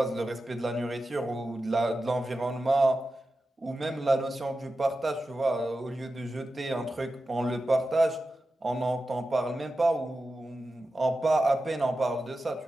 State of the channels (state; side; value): normal; both; correlation 0.92